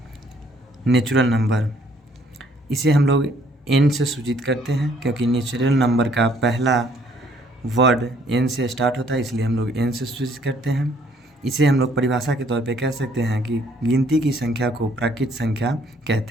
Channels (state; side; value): normal; both; correlation 0.64